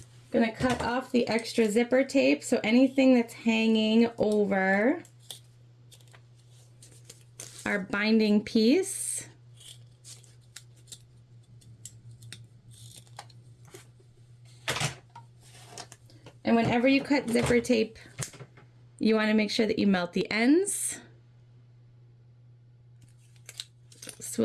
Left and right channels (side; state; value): both; identical; correlation 1.00